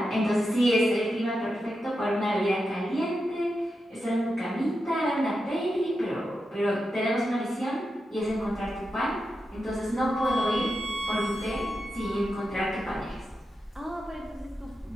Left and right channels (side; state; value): both; normal; correlation 0.88